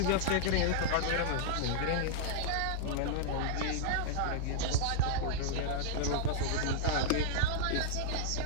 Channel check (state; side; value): different; both; correlation -0.02